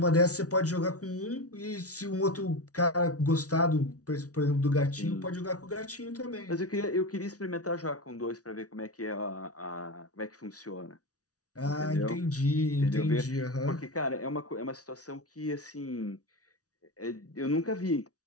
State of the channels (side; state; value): right; late; 0.68 ms